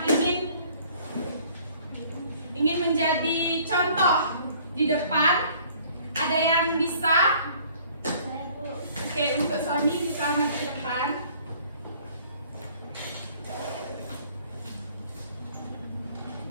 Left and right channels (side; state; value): both; inverted; correlation -0.55